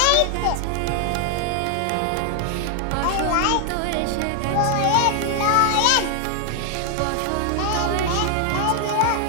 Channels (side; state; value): both; different; correlation 0.00